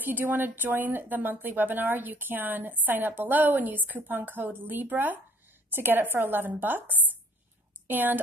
you do want to join the monthly webinar, you can sign up below and use coupon code Libra to get it for $11. And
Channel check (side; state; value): both; normal; correlation 0.56